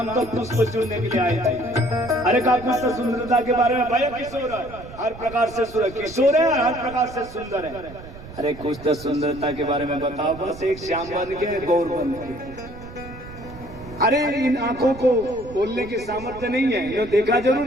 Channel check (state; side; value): noise; right; rumble, 16 dB below the sound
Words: तो पुष्प चुनने के लिए आए थे। अरे का कुछ तो सुंदरता के बारे में भाई, किशोर है हर प्रकार से किशोर है, हर प्रकार से सुंदर है। अरे कुछ तो सुंदरता के बारे में बताओ, बस एक श्याम बन के गौर बन के। अरे इन आंखों को बोलने की सामर्थ्य नहीं है, ये देखा